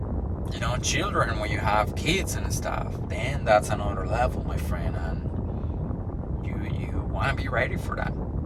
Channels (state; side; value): identical; both; correlation 1.00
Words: children, when you have kids and stuff, then that's another level, my friend, and you want to be ready for that.